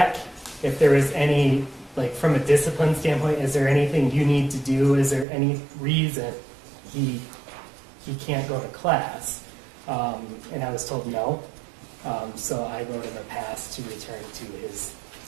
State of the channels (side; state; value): left; drops out; at 5.2 s